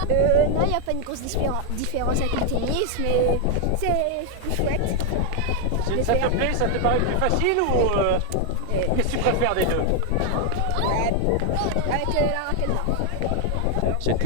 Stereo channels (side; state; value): both; different; correlation 0.00